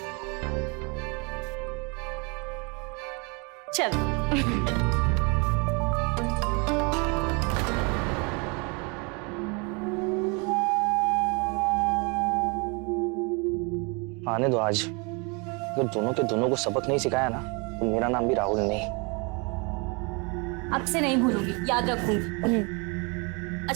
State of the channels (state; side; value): quieter; left; 31.4 dB